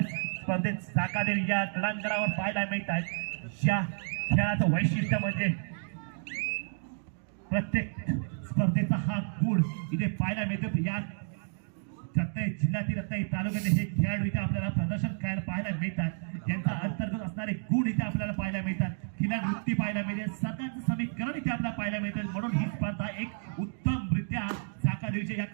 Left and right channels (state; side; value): silent; left; digital silence